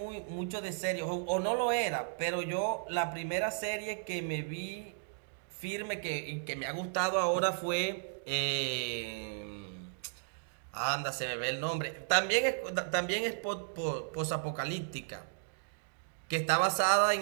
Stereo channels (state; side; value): silent; left; digital silence